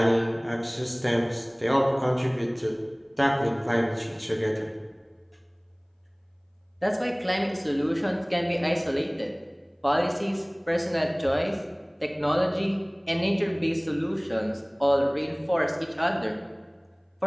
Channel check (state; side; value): identical; both; correlation 1.00